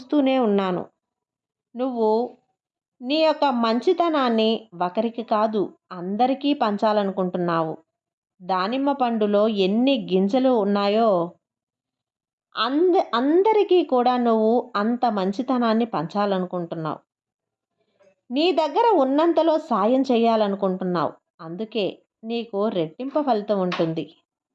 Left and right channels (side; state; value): both; identical; correlation 1.00